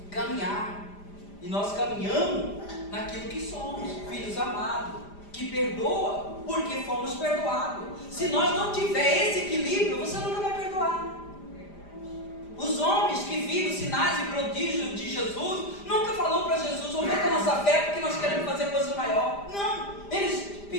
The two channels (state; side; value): late; right; 5.0 ms